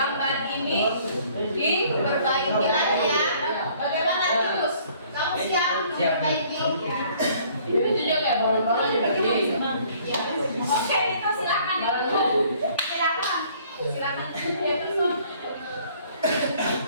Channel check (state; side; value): inverted; both; correlation -0.58